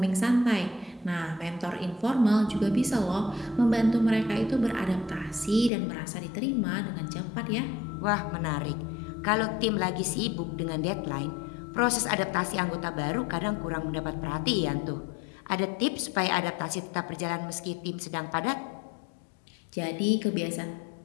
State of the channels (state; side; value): drops out; right; at 5.7 s